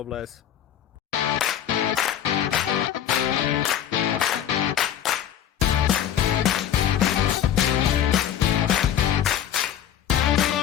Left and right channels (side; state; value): right; quieter; 10.2 dB